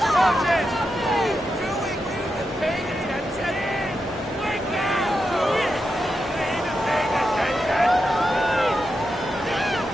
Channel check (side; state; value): both; normal; correlation 0.87